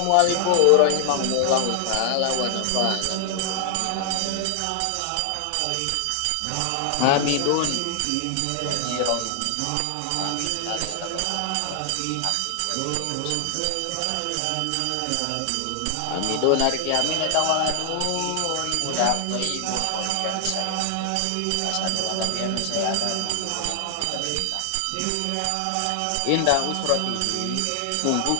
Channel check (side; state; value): both; different; correlation 0.00